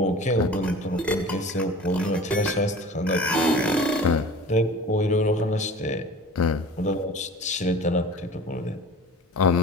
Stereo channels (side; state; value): both; normal; correlation 0.40